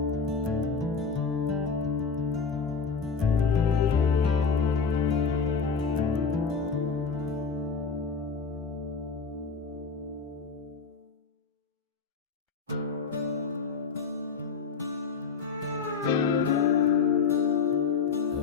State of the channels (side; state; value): right; quieter; 5.3 dB